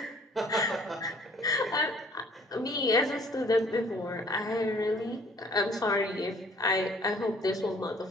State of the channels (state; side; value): normal; both; correlation 0.57